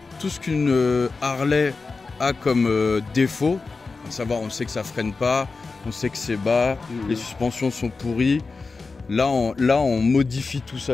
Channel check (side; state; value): right; quieter; 4.1 dB